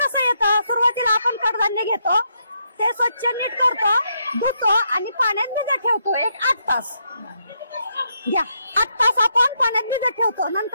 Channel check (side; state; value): both; inverted; correlation -0.78